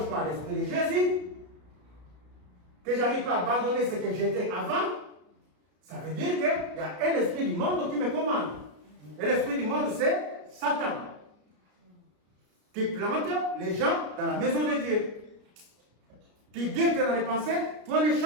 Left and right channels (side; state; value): left; late; 33 ms